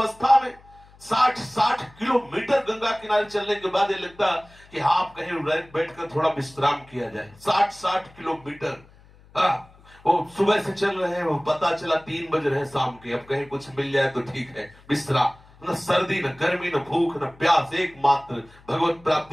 में 60 किलोमीटर गंगा किनारे चलने के बाद ये लगता कि हाँ, आप कहीं बैठकर थोड़ा विश्राम किया जाए। 60 किलोमीटर, वो सुबह से चल रहे हैं, वो पता चला 3 बज रहे हैं शाम के, अब कहीं कुछ मिल जाए तो ठीक है, विश्राम। न सर्दी, न गर्मी, न भूख, न प्यास, एकमात्र भगवत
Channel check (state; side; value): noise; left; hum, 26 dB below the sound